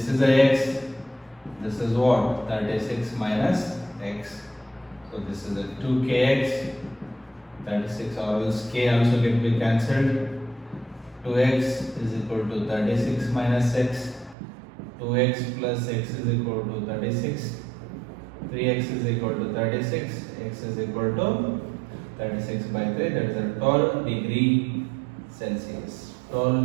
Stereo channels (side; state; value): left; drops out; at 14.4 s